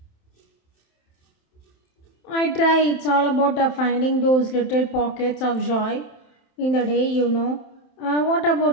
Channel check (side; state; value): right; late; 27 ms